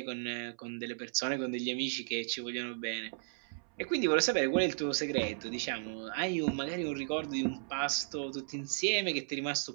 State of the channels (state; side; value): silent; left; 54 dB below the other